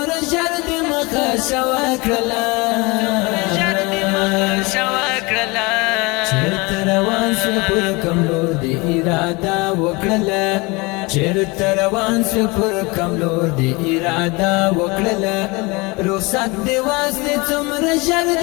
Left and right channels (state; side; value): quieter; right; 25.9 dB